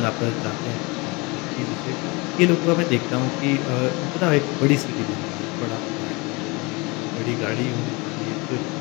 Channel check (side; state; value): right; quieter; 26.5 dB